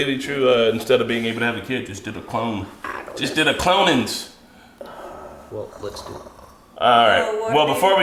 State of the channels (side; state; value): both; identical; correlation 1.00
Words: True, instead of being able to have a kid, just did a clone. Just did a clonings. Well, let's do it. All right. Oh, Well, before